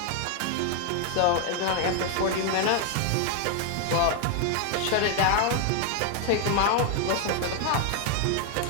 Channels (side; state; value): both; different; correlation 0.01